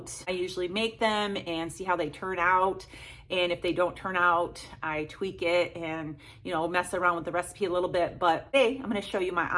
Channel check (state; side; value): identical; both; correlation 1.00